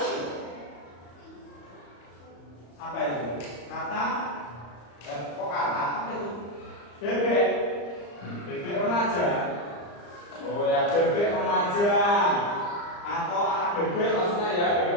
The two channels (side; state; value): right; late; 34 ms